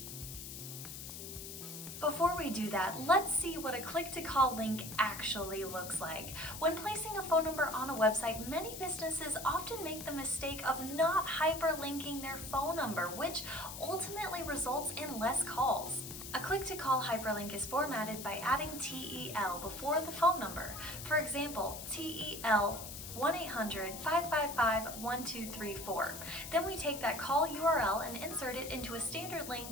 Before we do that, let's see what a click-to-call link actually looks like. When placing a phone number on a website, many businesses often make the mistake of not hyperlinking their phone number, which ultimately results in less calls. A click-to-call hyperlink is formatted by adding TEL before the phone number. For example, TEL 1-800-555-1234. Then we take that call URL and insert it into a standard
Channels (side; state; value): left; noise; hiss, 9 dB below the sound